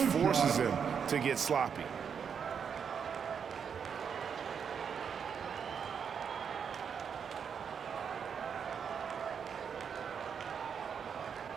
him to get sloppy.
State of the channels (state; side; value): quieter; left; 7.0 dB